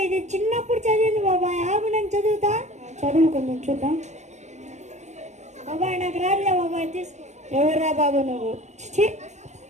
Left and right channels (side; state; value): left; late; 0.34 ms